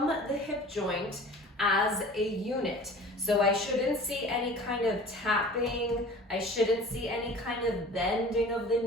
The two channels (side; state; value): both; normal; correlation 0.43